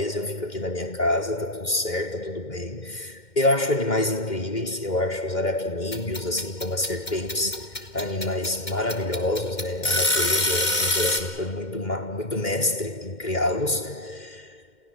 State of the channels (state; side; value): late; right; 2.1 ms